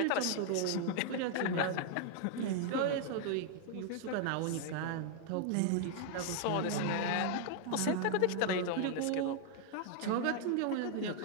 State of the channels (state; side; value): different; both; correlation 0.00